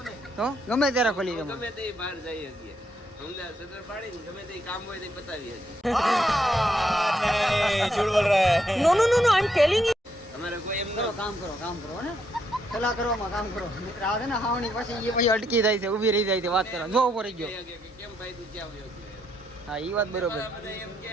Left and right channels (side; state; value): both; normal; correlation 0.76